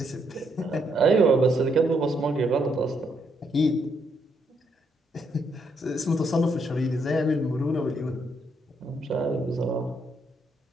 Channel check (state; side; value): normal; both; correlation 0.75